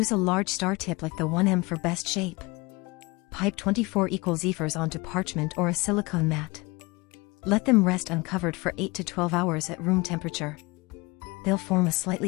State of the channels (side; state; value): right; quieter; 24.5 dB